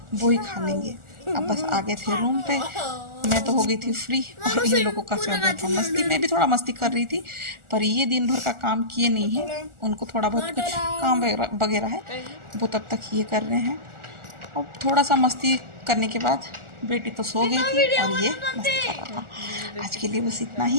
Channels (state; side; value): late; left; 1.4 ms